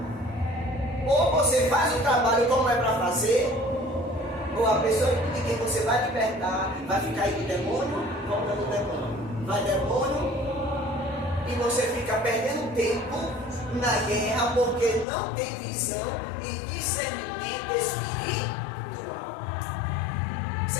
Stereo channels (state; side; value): drops out; right; at 15.1 s